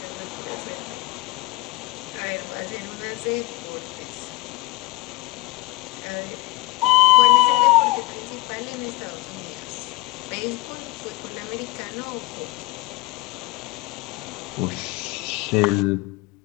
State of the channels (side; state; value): right; quieter; 19.9 dB